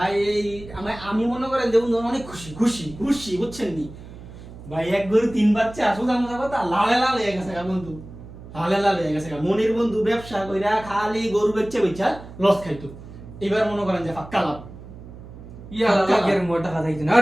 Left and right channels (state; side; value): noise; right; hum, 16 dB below the sound